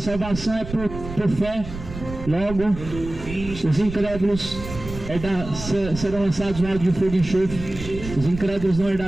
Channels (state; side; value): noise; right; rumble, 10 dB below the sound